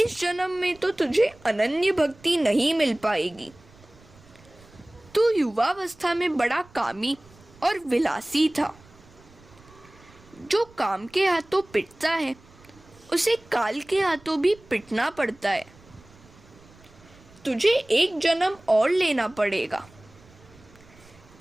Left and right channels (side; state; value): right; noise; rumble, 26 dB below the sound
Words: जन्म में तो तुझे अनन्य भक्ति नहीं मिल पाएगी। तू युवावस्था में बड़ा कामी और विलासी था। जो काम के हाथों पिटता है उसे काल के हाथों भी पिटना पड़ता है। तुझे एक जन्म और लेना पड़ेगा।